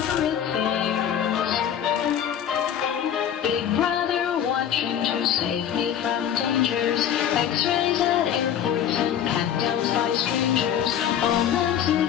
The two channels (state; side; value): quieter; right; 9.5 dB